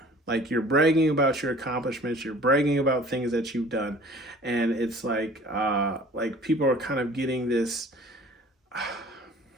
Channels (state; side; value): normal; both; correlation 0.48